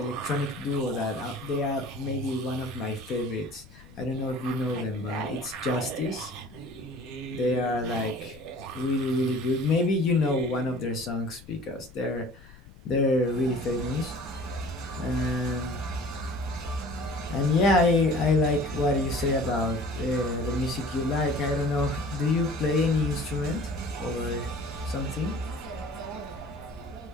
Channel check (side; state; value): left; noise; rumble, 21 dB below the sound